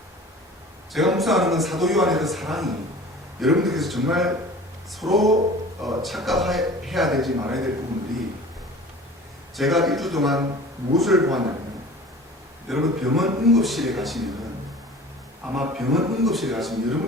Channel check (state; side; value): normal; both; correlation 0.42